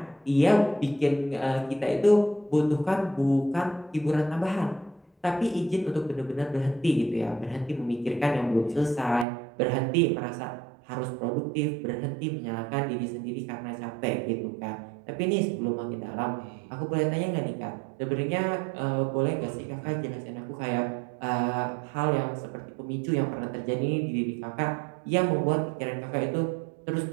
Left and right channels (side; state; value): left; drops out; at 9.2 s